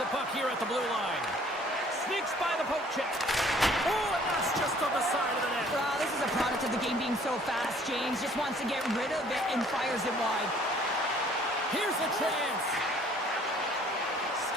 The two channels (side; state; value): both; normal; correlation 0.57